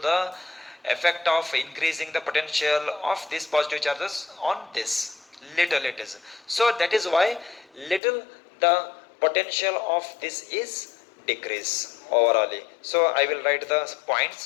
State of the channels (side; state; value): right; drops out; at 8.0 s